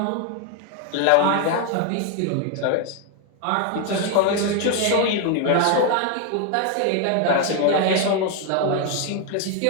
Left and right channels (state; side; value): different; both; correlation 0.01